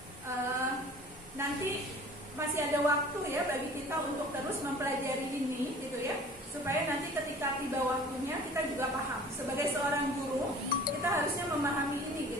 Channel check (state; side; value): normal; both; correlation 0.46